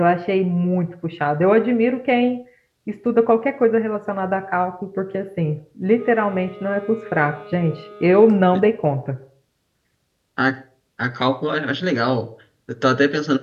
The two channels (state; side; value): identical; both; correlation 1.00